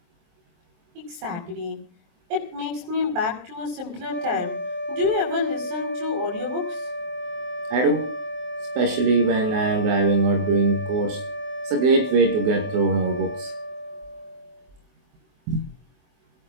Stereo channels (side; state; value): left; late; 23 ms